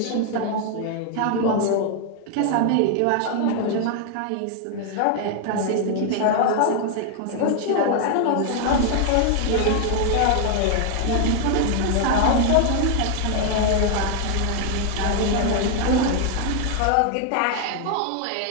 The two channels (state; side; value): different; both; correlation 0.00